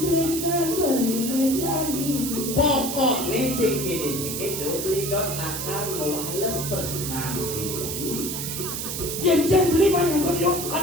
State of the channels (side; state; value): right; noise; hiss, 4 dB below the sound